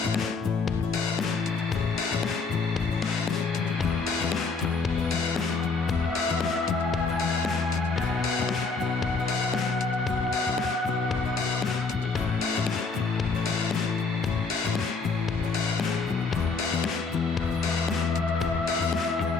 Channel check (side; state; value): right; quieter; 4.3 dB